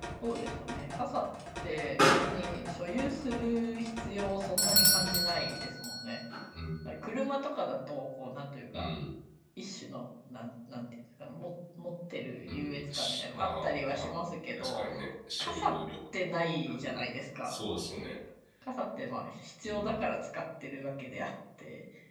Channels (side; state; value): both; identical; correlation 1.00